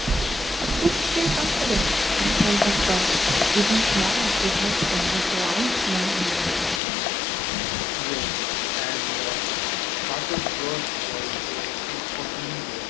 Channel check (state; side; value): drops out; right; at 6.8 s